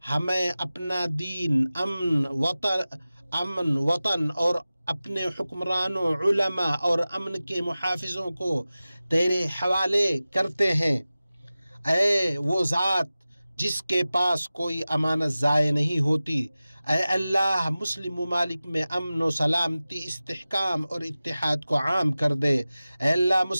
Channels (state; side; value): inverted; both; correlation -0.96